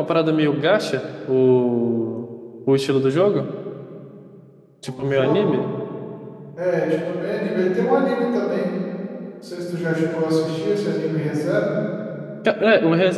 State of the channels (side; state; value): both; identical; correlation 1.00